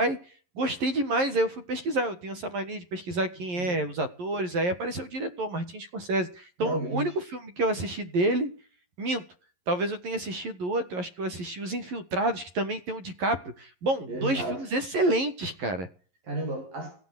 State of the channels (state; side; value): late; left; 11 ms